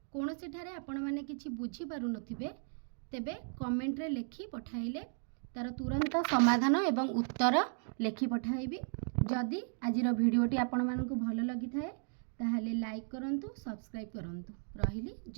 कौनसी ठारे आपण माने किछि बुझी पारु नथिबे तेबे कमेंट रे लिखि पठाइले तार तुरंत समाधान एवं उत्तर लिखि पठाइबी। जदि आजिर भिडियोटी आपण मानकु भल लगी थाए ताहले लाइक करंतु, सब्सक्राइब करंतु। रहिली,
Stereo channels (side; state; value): left; silent; 54 dB below the other